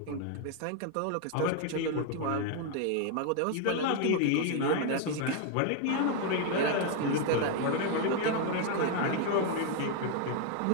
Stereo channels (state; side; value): different; both; correlation 0.00